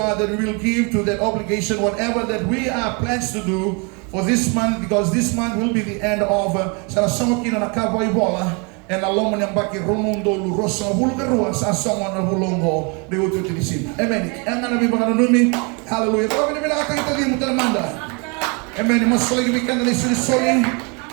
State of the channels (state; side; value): quieter; left; 32.8 dB